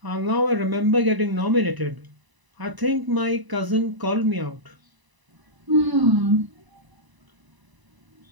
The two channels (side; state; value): left; late; 1.0 ms